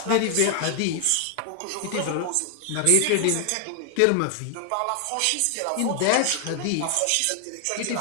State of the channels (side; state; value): both; different; correlation 0.00